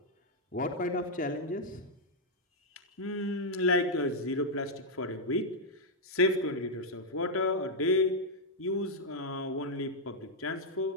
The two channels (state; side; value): normal; both; correlation -0.03